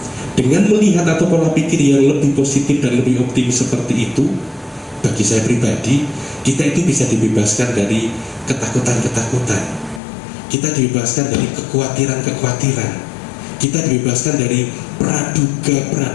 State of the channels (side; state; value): right; drops out; at 10.0 s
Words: Dengan melihat atau pola pikir yang lebih positif dan lebih optimis seperti itu, bagi saya pribadi, kita itu bisa dibebaskan dari ketakutan-ketakutan, kita dibebaskan dari kekhawatiran-kekhawatiran, kita dibebaskan dari